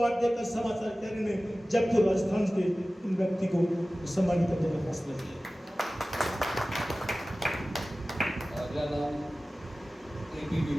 देकर समाचार कैरी ने जयपुर राजस्थान के इन व्यक्ति को सम्मानित करने का फैसला किया। अगला नाम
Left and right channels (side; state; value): both; normal; correlation 0.97